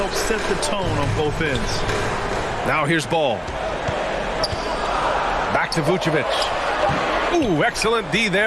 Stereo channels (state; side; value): identical; both; correlation 1.00